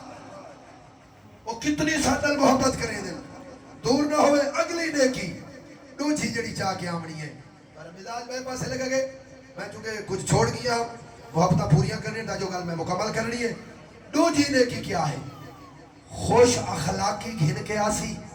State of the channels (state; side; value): identical; both; correlation 1.00